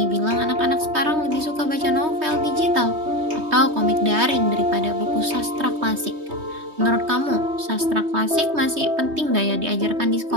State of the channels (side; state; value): left; late; 3.2 ms